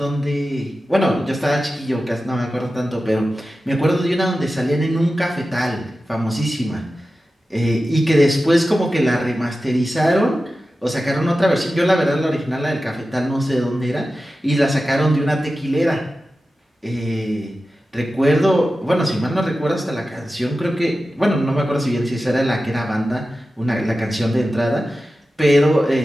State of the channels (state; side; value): normal; both; correlation 0.93